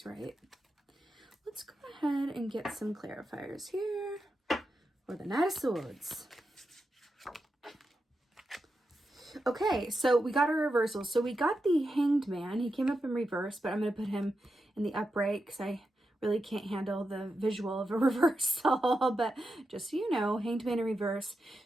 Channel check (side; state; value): both; normal; correlation 0.88